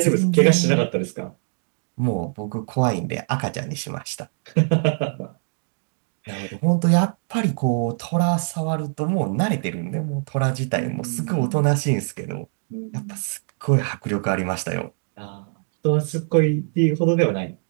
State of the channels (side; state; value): left; silent; digital silence